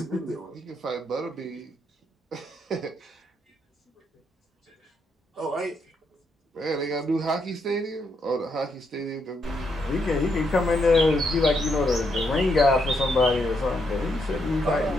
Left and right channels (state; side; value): normal; both; correlation 0.77